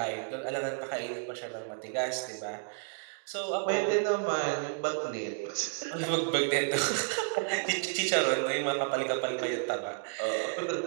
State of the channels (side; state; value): left; silent; digital silence